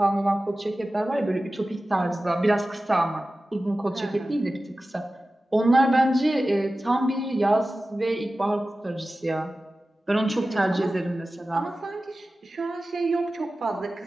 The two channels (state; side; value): normal; both; correlation 0.95